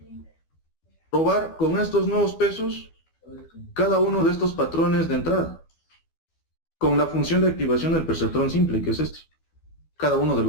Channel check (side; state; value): right; late; 12 ms